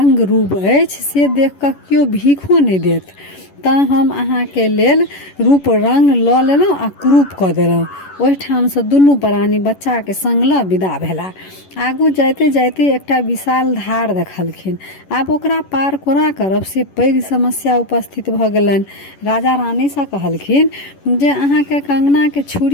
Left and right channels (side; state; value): right; late; 11 ms